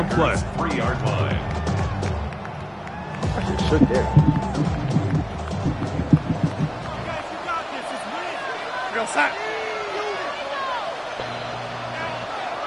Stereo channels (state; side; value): identical; both; correlation 1.00